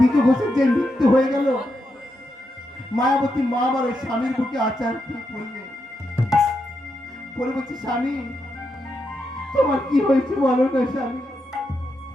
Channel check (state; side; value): normal; both; correlation 0.84